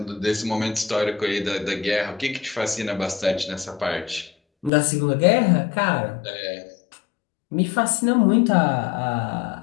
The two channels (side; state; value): right; drops out; at 4.7 s